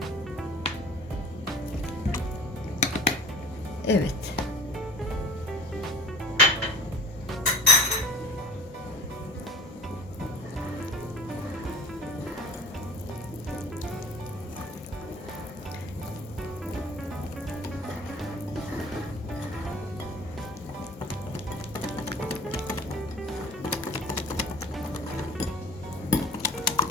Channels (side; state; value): both; normal; correlation 0.44